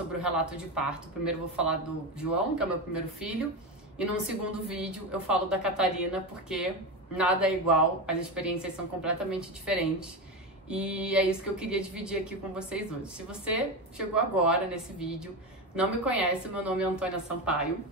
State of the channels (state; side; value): normal; both; correlation 0.18